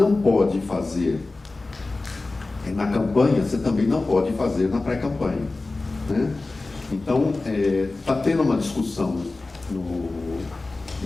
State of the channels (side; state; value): right; quieter; 3.3 dB